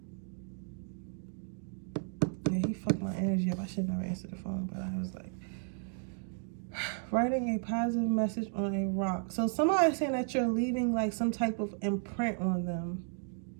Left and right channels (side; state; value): left; silent; 55 dB below the other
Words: Yeah, he fucked my energy up. I should never answer the phone, but I was like, writing a positive message on a rock. So somebody's saying that you're leaving like some type of imprint on them.